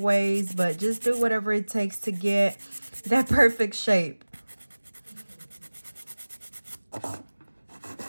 but just do whatever it takes to get that perfect shape.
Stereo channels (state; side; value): inverted; both; correlation -1.00